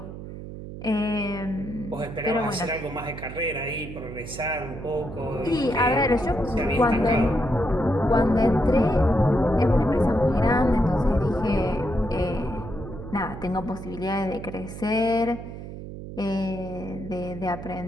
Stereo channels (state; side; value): noise; right; hum, 11 dB below the sound